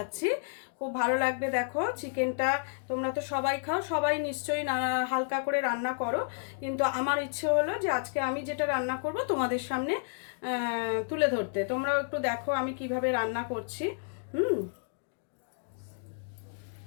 খুব ভালো লাগবে। দেখো, চিকেনটা তোমরা তো সবাই খাও, সবাই নিশ্চয়ই হালকা করে রান্না করো, কিন্তু আমার ইচ্ছে হলো যে আজকে আমি যেটা রান্না করব তোমাদের সামনে তুলে ধরতে। তোমরাও একটু দেখো আমি কিভাবে রান্না করছি।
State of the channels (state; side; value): silent; right; digital silence